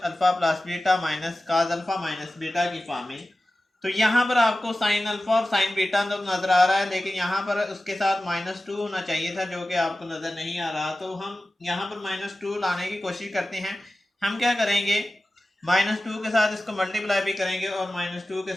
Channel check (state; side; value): normal; both; correlation 0.95